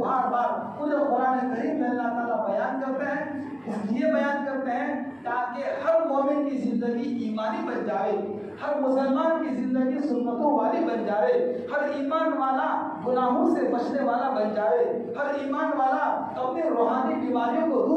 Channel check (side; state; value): both; identical; correlation 1.00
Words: بار پورے قرآن کریم میں اللہ تعالیٰ بیان کرتے ہیں. اس لیے بیان کرتے ہیں تاکہ ہر مومن کی زندگی ایمانی بن جائے ہر مسلمان کی زندگی سنتوں والی بن جائے ہر ایمان والا گناہوں سے بچنے والا بن جائے ہر ایمان والا اپنی روحانی بیماریوں کو